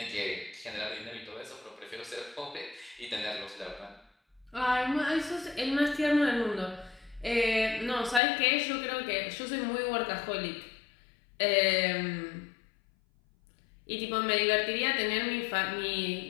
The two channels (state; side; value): drops out; right; at 8.2 s